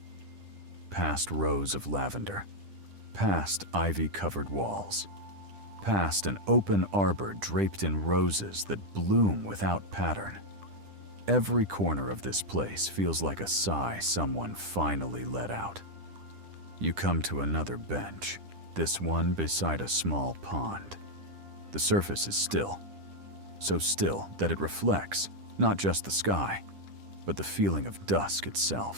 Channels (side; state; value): left; late; 10 ms